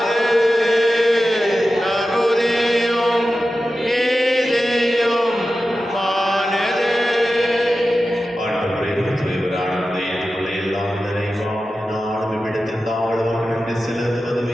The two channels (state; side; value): normal; both; correlation 0.93